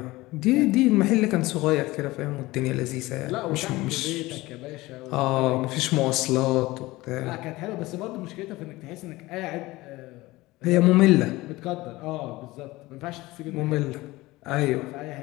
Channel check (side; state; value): right; quieter; 19.6 dB